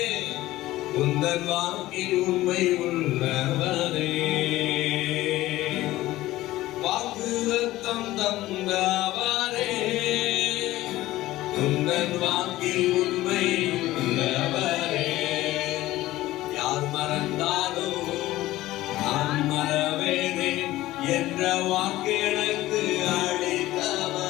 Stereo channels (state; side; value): quieter; right; 16.4 dB